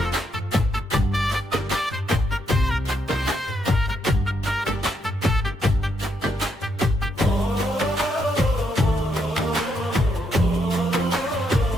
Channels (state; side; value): normal; both; correlation 0.77